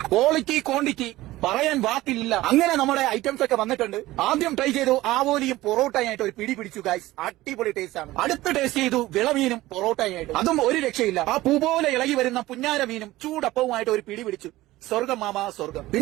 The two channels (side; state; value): left; quieter; 17.3 dB